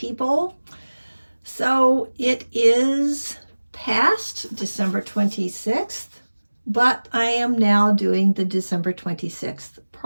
So it is past December 26th, but I am now doing the December 26th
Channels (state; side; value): inverted; both; correlation -1.00